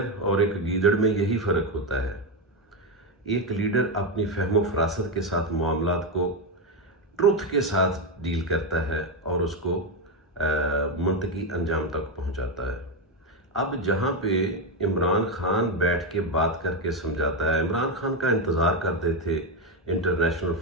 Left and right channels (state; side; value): normal; both; correlation 0.08